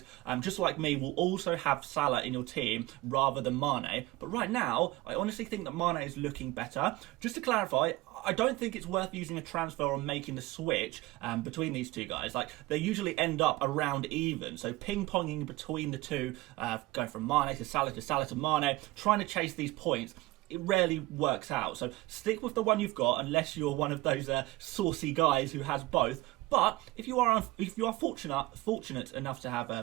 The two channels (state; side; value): quieter; left; 19.6 dB